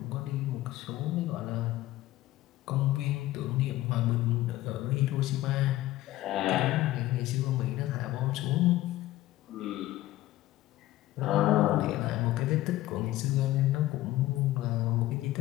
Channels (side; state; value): right; quieter; 16.0 dB